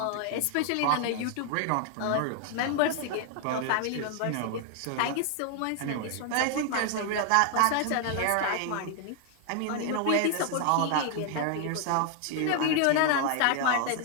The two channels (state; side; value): different; both; correlation 0.00